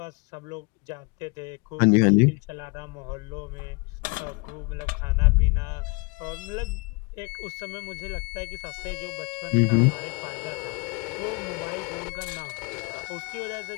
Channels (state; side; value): quieter; right; 29.9 dB